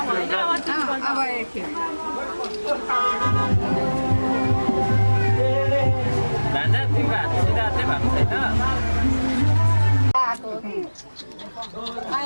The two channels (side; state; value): both; inverted; correlation -1.00